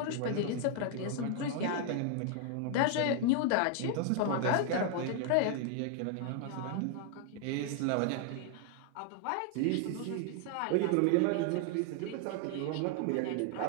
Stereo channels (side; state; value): both; different; correlation 0.00